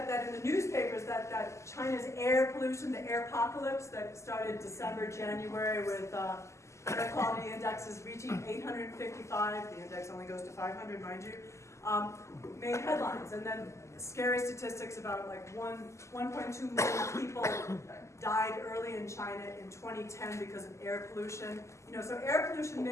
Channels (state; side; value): late; right; 0.14 ms